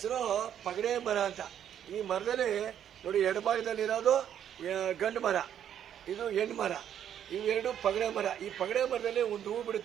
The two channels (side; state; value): left; quieter; 9.7 dB